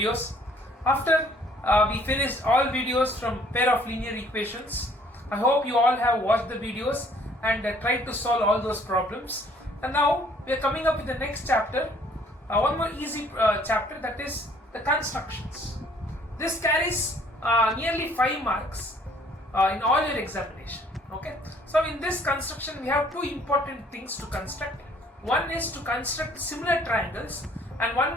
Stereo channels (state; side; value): normal; both; correlation 0.59